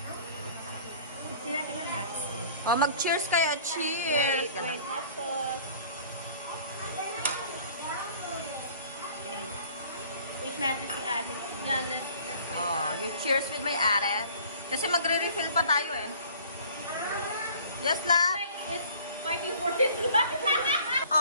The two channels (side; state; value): both; inverted; correlation -0.50